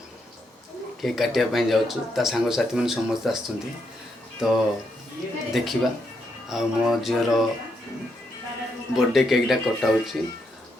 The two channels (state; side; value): normal; both; correlation 0.79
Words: केक काटापी जाऊँ सांग साथी मैंने समस्त आस तो देखा आ मो झीर बर्थडे केकटा कटाऊँ